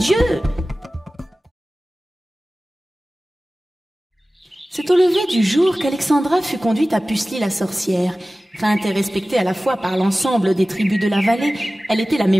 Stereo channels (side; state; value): both; normal; correlation 0.97